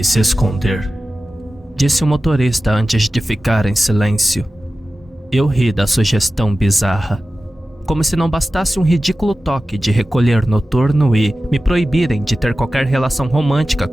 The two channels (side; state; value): both; normal; correlation 0.95